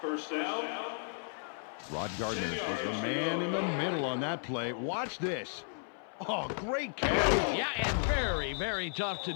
down. Rod Gardner was the man in the middle on that play. Watch this. Oh, great catch. Yeah, and very, very tough to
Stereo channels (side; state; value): right; silent; 55 dB below the other